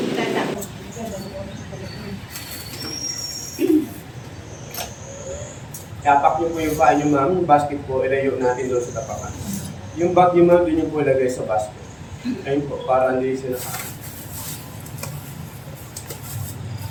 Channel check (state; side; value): identical; both; correlation 1.00